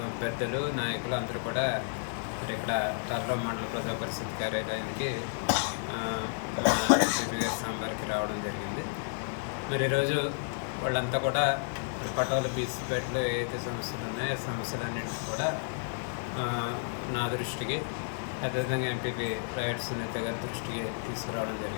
పెద్దలు, నాయకులు అందరూ కూడా మరి ఇక్కడ తాళరేవు మండల ప్రజా పరిషత్ కార్యాలయానికి సాంబార్కి రావడం జరిగింది. మరి ఈరోజు వాళ్ళంతా కూడా పటోల బీసీపేటలో ఏదైతే సమస్యలు ఉన్నాయో ఆ సమస్యలన్నింటినీ కూడా నా దృష్టికి, అదేవిధంగా ఎంపీపీ రాయుడు సునీత గారి దృష్టికి తీసుకురావడం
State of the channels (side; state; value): right; silent; digital silence